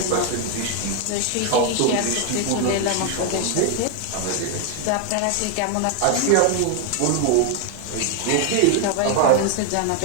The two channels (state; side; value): different; both; correlation 0.00